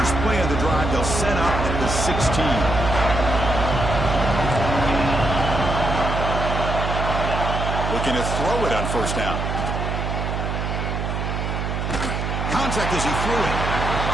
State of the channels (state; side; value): noise; right; hum, 2 dB below the sound